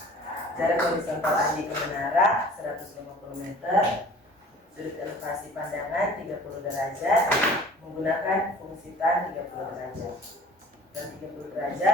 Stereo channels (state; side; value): normal; both; correlation 0.47